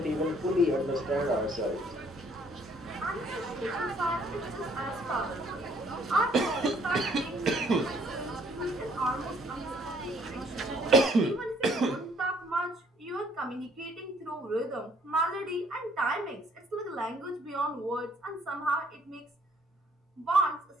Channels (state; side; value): normal; both; correlation 0.62